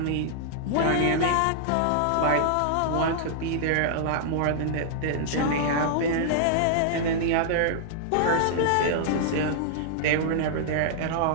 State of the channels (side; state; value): both; different; correlation -0.01